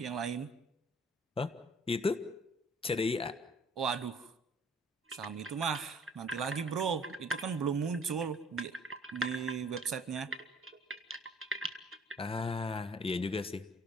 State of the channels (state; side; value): normal; both; correlation 0.55